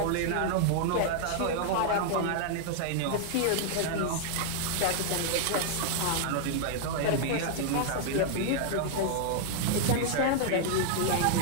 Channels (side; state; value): both; different; correlation -0.01